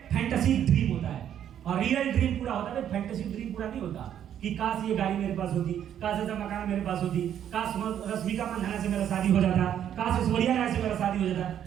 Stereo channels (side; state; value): left; quieter; 9.9 dB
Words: फैंटेसी ड्रीम होता है। और रियल ड्रीम पूरा होता है, फैंटेसी ड्रीम पूरा नहीं होता। कि काश ये गाड़ी मेरे पास होती, काश ऐसा मकान मेरे पास होती, काश रश्मिका मंदाना से मेरा शादी हो जाता, काश ऐश्वर्या राय से मेरा शादी हो जाता।